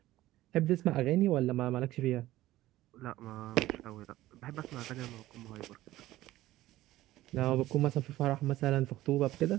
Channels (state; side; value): quieter; left; 15.8 dB